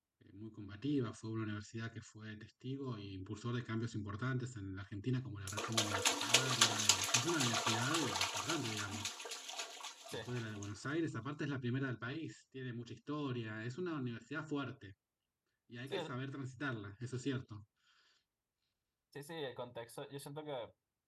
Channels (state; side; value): identical; both; correlation 1.00